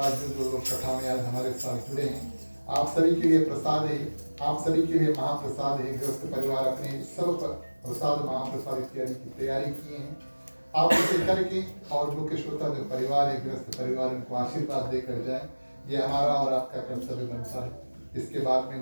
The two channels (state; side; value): inverted; both; correlation -1.00